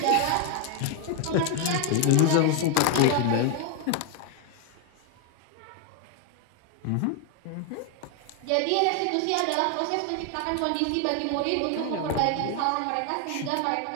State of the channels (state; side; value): different; both; correlation 0.00